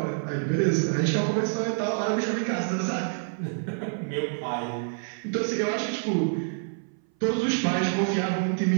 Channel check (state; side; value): silent; left; 59 dB below the other